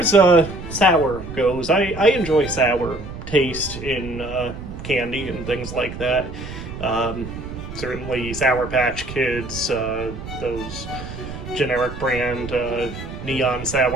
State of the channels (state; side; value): noise; right; rumble, 10 dB below the sound